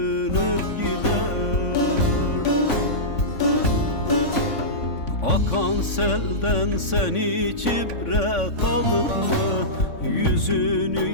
gider. Akan selden sen hiç ibret aldın mı? Yüzünü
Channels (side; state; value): right; late; 3.5 ms